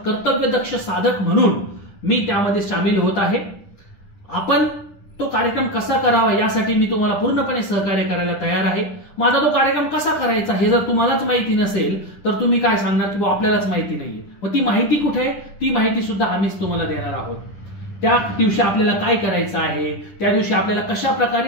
कर्तव्यदक्ष साधक म्हणून मी त्यामध्ये सामील होत आहे. आपण तो कार्यक्रम कसा करावा यासाठी मी तुम्हाला पूर्णपणे सहकार्य करायला तयार आहे. माझा तो कार्यक्रम कसा करायचा हे जर तुम्हालाच माहिती नसेल तर तुम्ही काय सांगणार की आपल्यालाच माहिती नाहीये. मग ती माहिती कुठे आहे? ती माहिती सुद्धा आम्हीच तुम्हाला देणार आहोत. त्या दिवशी आपल्याला काय करायचं आहे, त्या दिवशी आपल्याला कशा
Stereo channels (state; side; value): late; right; 10 ms